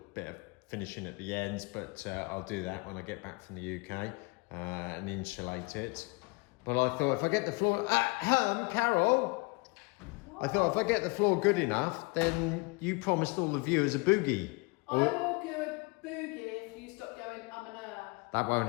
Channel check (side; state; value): right; quieter; 28.4 dB